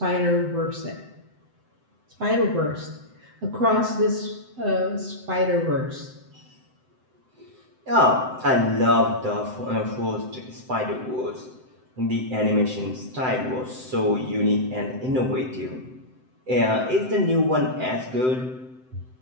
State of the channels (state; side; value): late; left; 7.8 ms